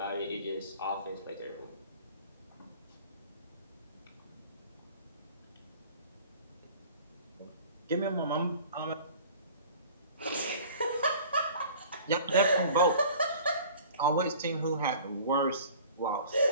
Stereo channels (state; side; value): inverted; both; correlation -0.46